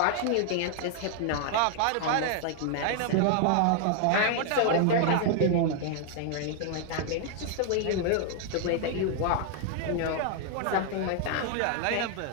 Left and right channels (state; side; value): different; both; correlation 0.00